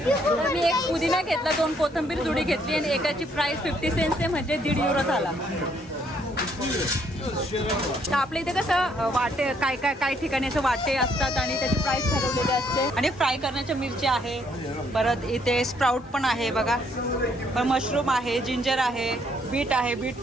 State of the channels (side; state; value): both; normal; correlation 0.69